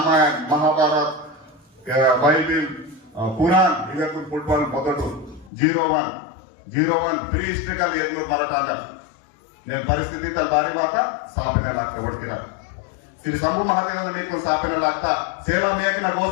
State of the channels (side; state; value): right; drops out; at 5.5 s